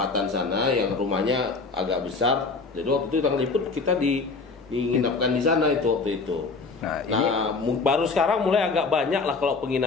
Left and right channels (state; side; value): quieter; right; 4.2 dB